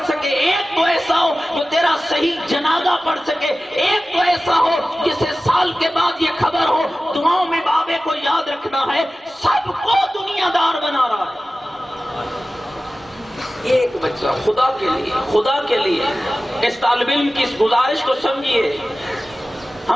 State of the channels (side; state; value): both; normal; correlation 0.96